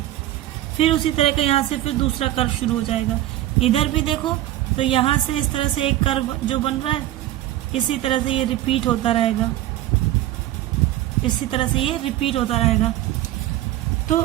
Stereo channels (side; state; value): left; quieter; 14.3 dB